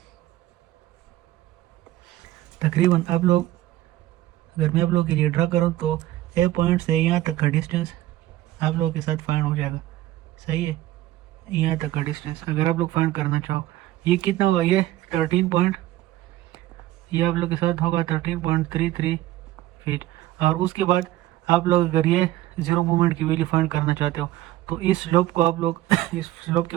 आप लोग, अगर मैं आप लोगों के लिए ड्रा करूँ तो ए पॉइंट से यहाँ तक का डिस्टेंस आप लोगों के साथ फाइंड हो जाएगा, सही है। यहाँ तक का डिस्टेंस अगर आप लोग फाइंड करना चाहो, ये कितना होगा, ये 13 पॉइंट, ये आप लोग के साथ होगा 13.33 फीट। और उसके बाद आप लोग अगर ये 0 मूवमेंट की वैल्यू फाइंड करना चाहते हो तो इस स्लोप को आप लोग इस स्लोप के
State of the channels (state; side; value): quieter; left; 15.1 dB